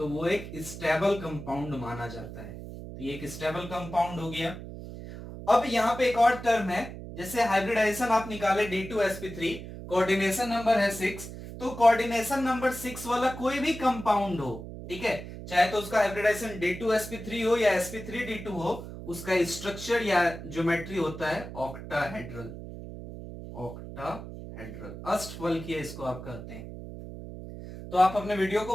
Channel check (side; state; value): right; noise; hum, 11 dB below the sound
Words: वो एक स्टेबल कंपाउंड माना जाता है। तो ये एक स्टेबल कंपाउंड हो गया। अब यहां पे एक और टर्म है, जैसे हाइब्रिडाइजेशन आप निकाले D2sp3, कोऑर्डिनेशन नंबर है 6, तो कोऑर्डिनेशन नंबर 6 वाला कोई भी कंपाउंड हो, ठीक है, चाहे तो उसका हाइब्रिडाइजेशन D2sp3 हो या sp3d2 हो, उसका स्ट्रक्चर या ज्योमेट्री होता है ऑक्टाहेड्रल, ऑक्टाहेड्रल, अष्टफल किया इसको आप कहते हैं। तो आप अपने वीडियो